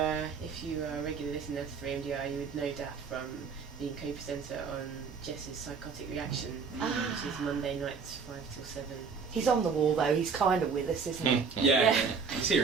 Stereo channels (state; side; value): quieter; left; 5.5 dB